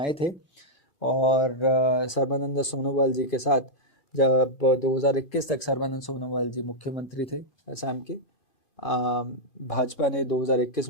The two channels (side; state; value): right; late; 2.5 ms